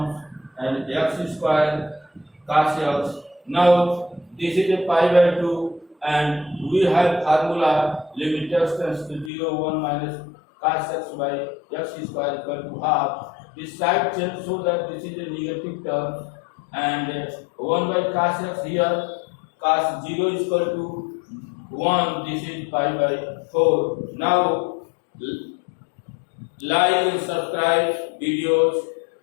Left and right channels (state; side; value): drops out; right; at 9.3 s